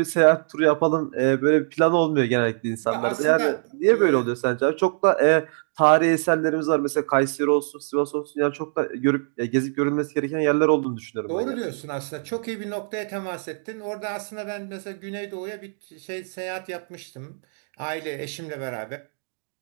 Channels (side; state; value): left; silent; digital silence